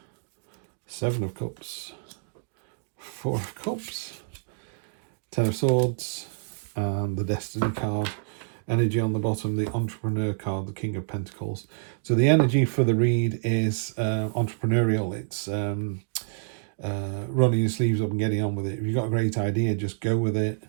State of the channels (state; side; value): silent; left; digital silence